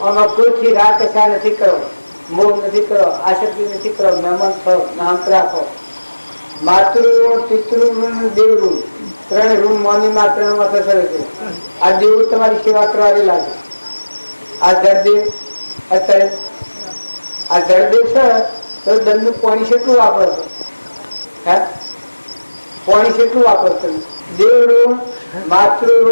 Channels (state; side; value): inverted; both; correlation -1.00